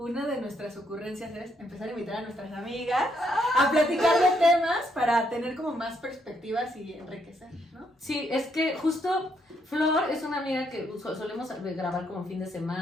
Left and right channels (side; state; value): both; normal; correlation 0.75